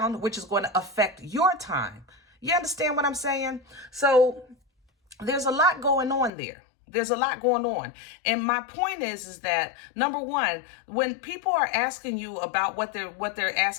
which is going to affect your time. You understand what I'm saying? So there's a lot going on there. There's a lot going on. And my point is that, number one, when people are asking you about what they're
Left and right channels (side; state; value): right; drops out; at 6.3 s